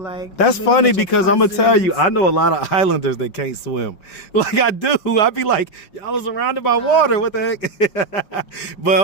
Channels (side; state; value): right; late; 5.3 ms